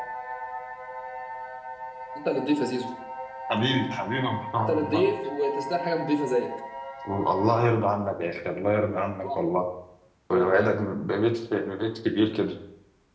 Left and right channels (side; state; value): both; identical; correlation 1.00